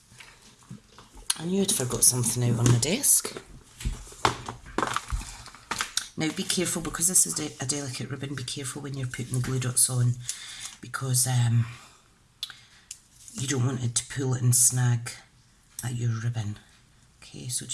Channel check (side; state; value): both; identical; correlation 1.00